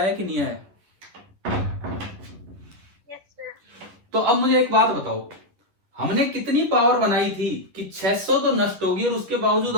कि नहीं आया? Yes, sir. तो अब मुझे एक बात बताओ, हमने कितनी पावर बनाई थी कि 600 तो नष्ट होगी और उसके बावजूद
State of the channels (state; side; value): late; left; 10 ms